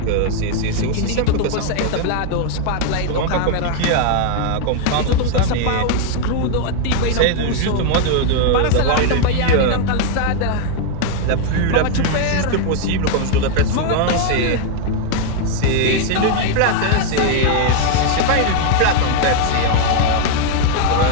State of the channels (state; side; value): different; both; correlation 0.00